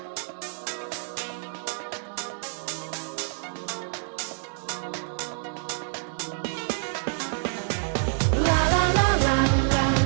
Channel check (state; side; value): silent; left; digital silence